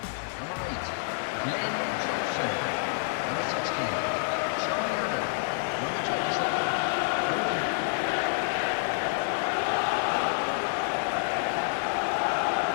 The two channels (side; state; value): right; silent; 59 dB below the other